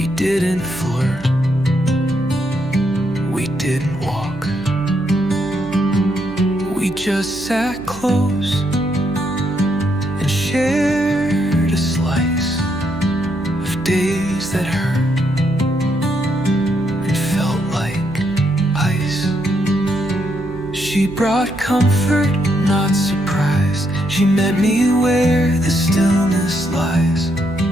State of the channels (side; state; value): right; noise; hum, 17 dB below the sound